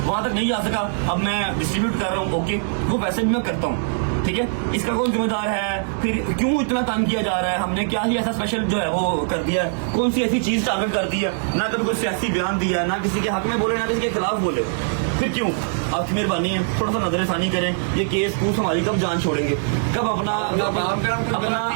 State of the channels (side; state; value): left; silent; 64 dB below the other